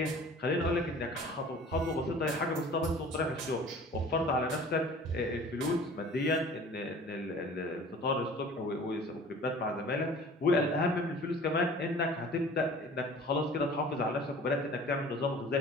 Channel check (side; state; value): both; normal; correlation 0.45